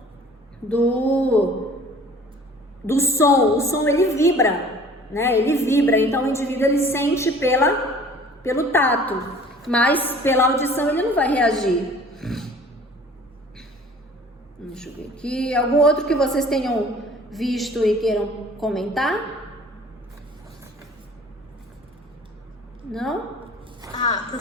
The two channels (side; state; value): both; normal; correlation 0.49